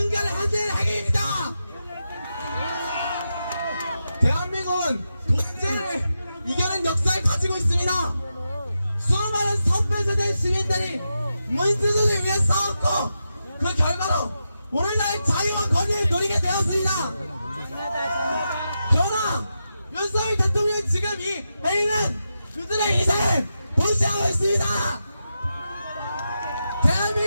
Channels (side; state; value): both; inverted; correlation -0.88